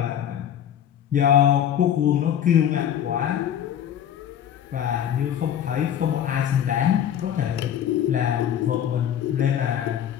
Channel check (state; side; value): quieter; right; 9.8 dB